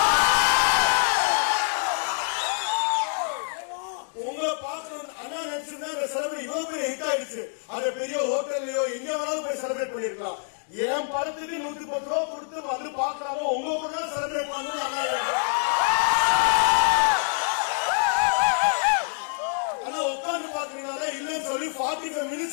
உங்களை பார்க்கணும் அண்ணா நினைச்சிருந்தா இந்த செலிபிரேட் இவ்வளவு பெரிய ஹிட் ஆயிடுச்சு. அதை பெரிய ஹோட்டல்லையோ எங்க வேணாலும் போய் செலிபிரேட் பண்ணிருக்கலாம். என் படத்துக்கு 110 ரூபா கொடுத்து வந்து பாக்குறாங்க, உங்க கூட தான் செலிபிரேட் பண்ணணும். ஆனா உட்காந்து பாக்குறீங்களா இல்லன்னு சொல்லி 45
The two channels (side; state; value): right; silent; 61 dB below the other